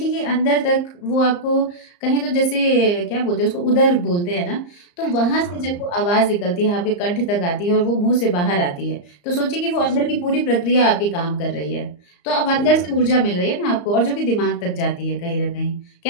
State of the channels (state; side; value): late; right; 34 ms